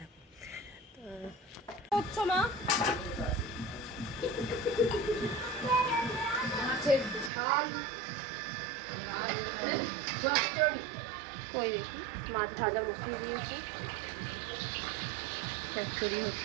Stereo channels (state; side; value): drops out; left; at 7.3 s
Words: থাকো। তো মা মাছের ঝাল, কই দেখি মাছ ভাজা বসিয়ে দিয়েছি, চচ্চড়ি